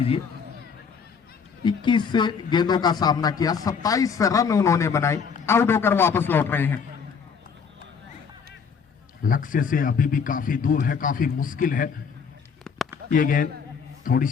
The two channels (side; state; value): right; quieter; 6.2 dB